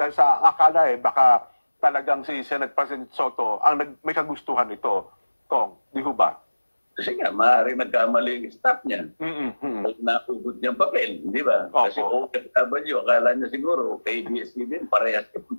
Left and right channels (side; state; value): both; inverted; correlation -1.00